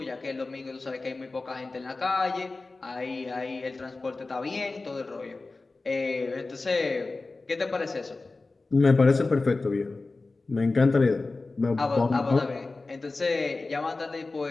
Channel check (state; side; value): quieter; right; 3.5 dB